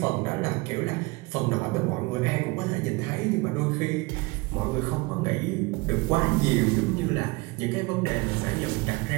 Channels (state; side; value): quieter; left; 24.7 dB